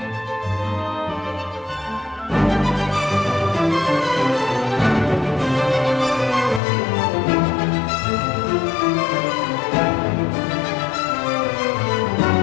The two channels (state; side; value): drops out; right; at 6.6 s